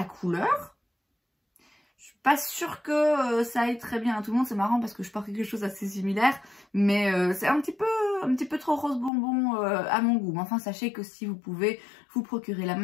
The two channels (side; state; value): right; drops out; at 9.1 s